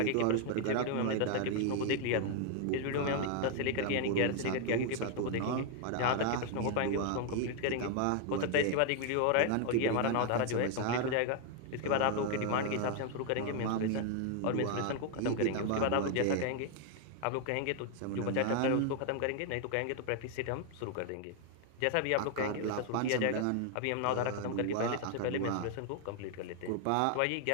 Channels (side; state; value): both; different; correlation 0.00